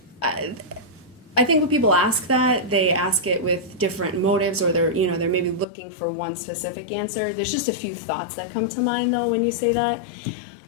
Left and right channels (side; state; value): right; drops out; at 5.7 s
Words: I think when people ask that, they ask it with different motives, or they're maybe looking for one specific answer. There's just a few thoughts that come to mind though when you say that.